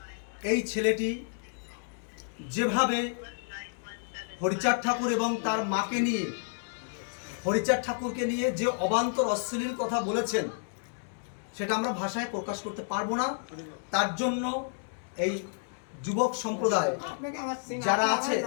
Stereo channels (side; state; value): right; silent; 57 dB below the other